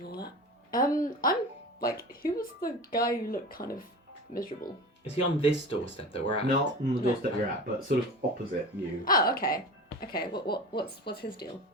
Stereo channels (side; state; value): both; normal; correlation 0.33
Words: all that. I'm like, who was the guy who looked kind of miserable? Is he on this doorstep that we're at? Not on the doorstep you're at, but sort of opposite you. Oh, okay. Okay. What's his deal?